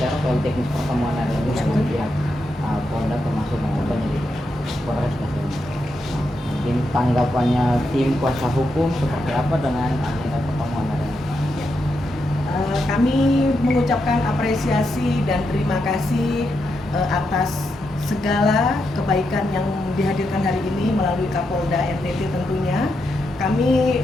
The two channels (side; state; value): both; normal; correlation 0.84